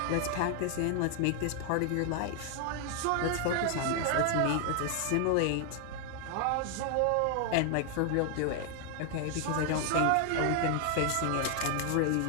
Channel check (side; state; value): both; different; correlation 0.00